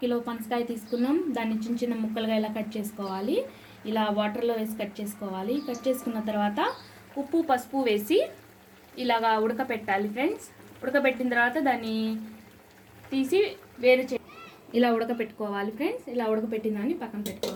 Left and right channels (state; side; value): identical; both; correlation 1.00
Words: కిలో పనసకాయ తీసుకున్నాం. దాన్ని చిన్న చిన్న ముక్కలుగా ఇలా కట్ చేసుకోవాలి. ఇలా వాటర్లో వేసి కట్ చేసుకోవాలి. కట్ చేసుకున్న తర్వాత ఉప్పు పసుపు వేసి ఇలాగా ఉడకపెట్టాలి ఫ్రెండ్స్. ఉడకబెట్టిన తర్వాత దాన్ని తీసి ఇలా ఉడకపెట్టుకోవాలి ఫ్రెండ్స్. ఇలా ఉడకపెట్టిన దాన్ని పక్కన